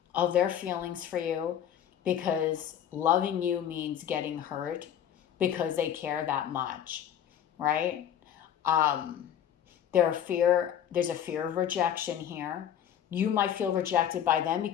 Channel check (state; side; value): quieter; right; 9.7 dB